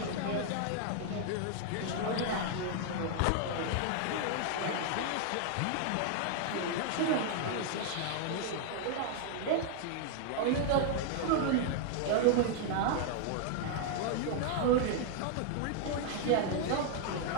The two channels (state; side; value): different; both; correlation 0.00